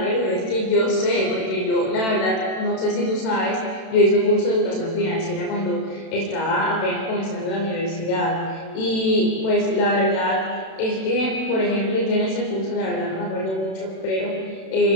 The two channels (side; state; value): right; late; 32 ms